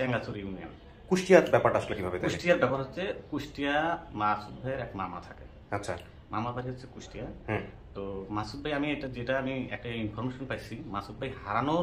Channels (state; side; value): identical; both; correlation 1.00